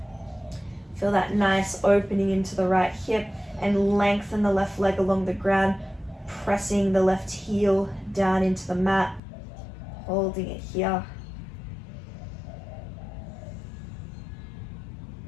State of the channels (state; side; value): drops out; right; at 9.2 s